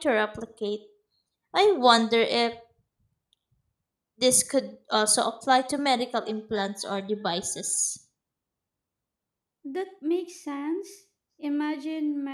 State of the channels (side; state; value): both; identical; correlation 1.00